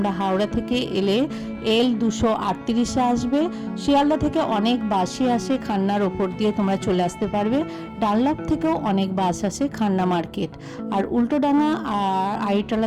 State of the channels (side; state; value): both; identical; correlation 1.00